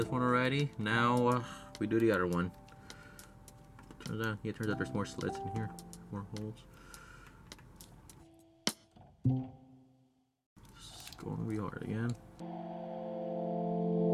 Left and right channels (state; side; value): identical; both; correlation 1.00